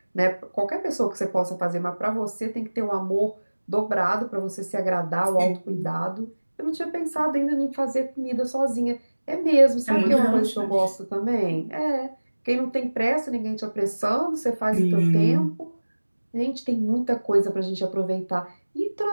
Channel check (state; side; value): inverted; both; correlation -1.00